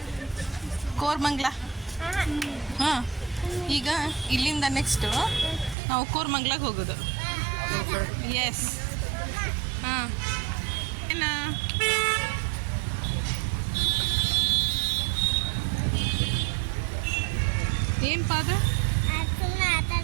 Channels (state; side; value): drops out; left; at 5.8 s